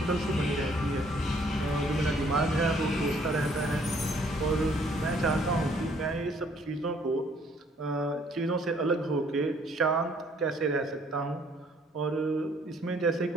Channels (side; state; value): both; normal; correlation 0.62